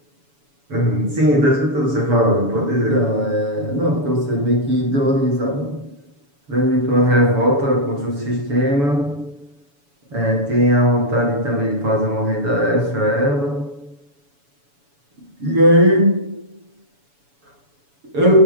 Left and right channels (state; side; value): late; left; 7.0 ms